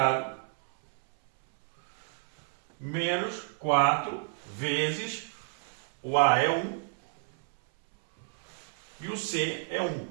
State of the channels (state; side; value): silent; left; 58 dB below the other